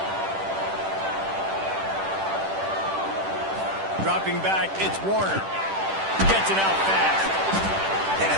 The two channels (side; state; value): left; late; 10 ms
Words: Dropping back, it's Warner. Gets it out fast. And